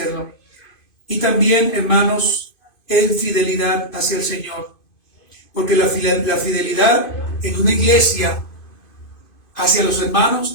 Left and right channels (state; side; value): late; right; 2.5 ms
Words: Y también, hermanos, en fidelidad hacia el Señor. Porque la fidelidad en una iglesia hacia los hermanos